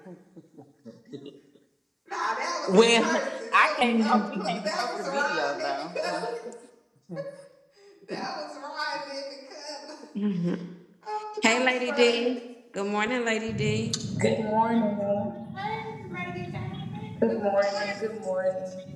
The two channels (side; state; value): both; identical; correlation 1.00